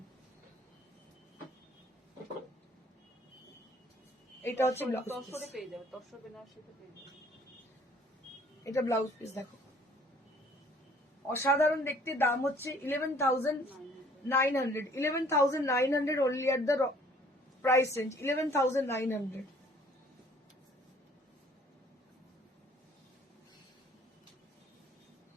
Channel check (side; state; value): both; normal; correlation 0.57